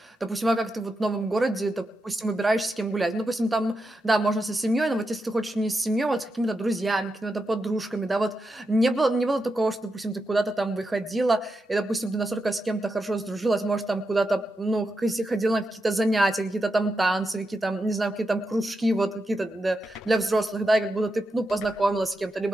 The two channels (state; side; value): normal; both; correlation 0.86